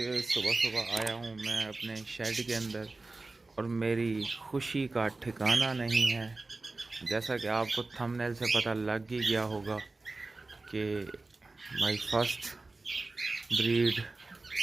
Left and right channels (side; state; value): left; quieter; 3.4 dB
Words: सुबह सुबह आया हूँ मैं अपने शेड के अंदर और मेरी खुशी का ठिकाना नहीं है। जैसा कि आपको थंबनेल से पता लग ही गया होगा कि माय फर्स्ट ब्रीड